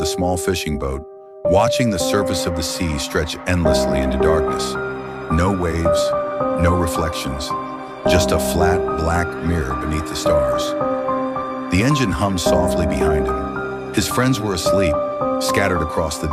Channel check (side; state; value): both; identical; correlation 1.00